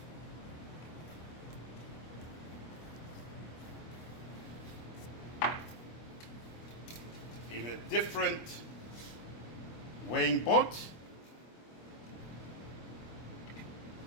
In a different weighing pot,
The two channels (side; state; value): right; late; 25 ms